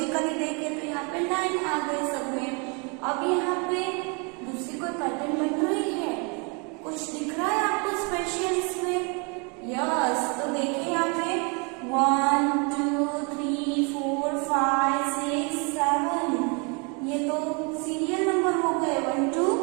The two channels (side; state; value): left; quieter; 33.4 dB